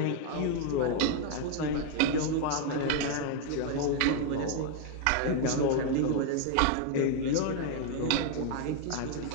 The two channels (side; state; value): both; different; correlation 0.00